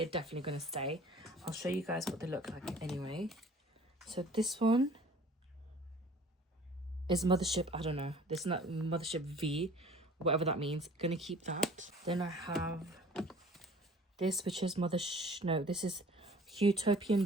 definitely going to stay. I'll show you guys what they look like anyway. So this one is Mothership, I don't know. This is not Mothership V, whatever that means. Gonna keep that. Then I have this, which is this is Utopian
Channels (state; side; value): normal; both; correlation 0.50